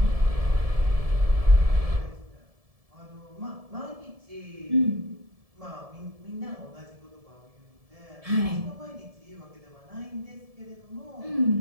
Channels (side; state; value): left; late; 1.7 ms